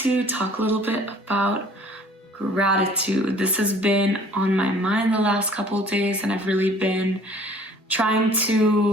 talk a little bit about gratitude. This has been on my mind the last couple of days, and I've really been trying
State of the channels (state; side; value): normal; both; correlation 0.53